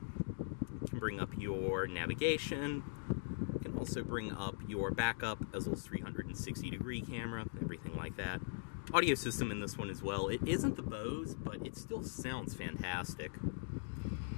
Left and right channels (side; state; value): right; silent; digital silence